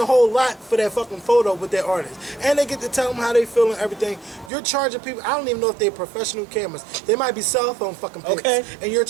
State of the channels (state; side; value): drops out; left; at 4.5 s